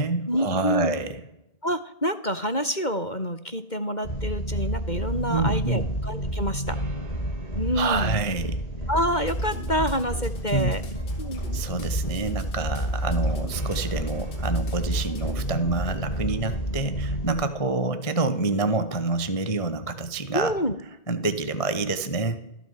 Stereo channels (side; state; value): right; late; 2.1 ms